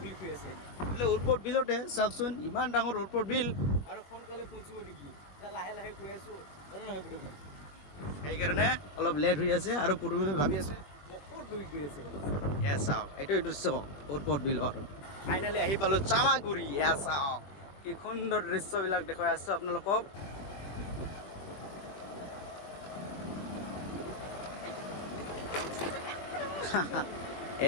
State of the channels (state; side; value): late; right; 21 ms